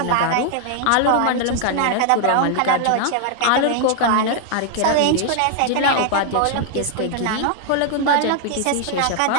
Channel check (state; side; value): different; both; correlation 0.00